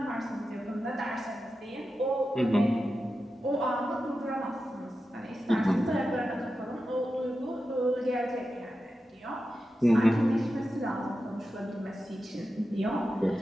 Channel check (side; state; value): both; normal; correlation 0.91